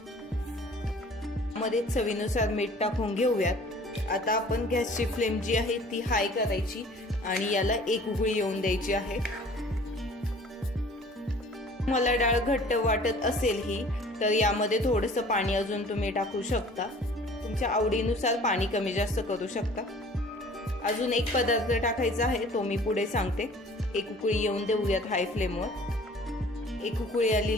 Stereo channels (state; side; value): normal; both; correlation 0.49